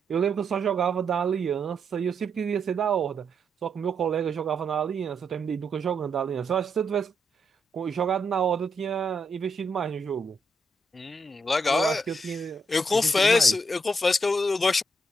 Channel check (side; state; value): both; normal; correlation 0.79